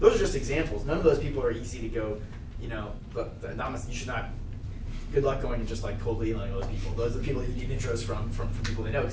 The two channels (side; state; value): both; identical; correlation 1.00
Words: Those are just examples. None of those people are easy to go, but you should not, good luck going and just like coldly emailing those people. Those are the people you need intros from people they know